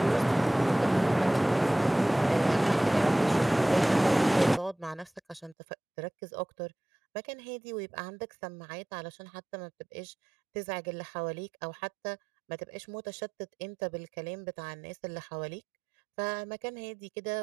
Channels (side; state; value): left; drops out; at 5.6 s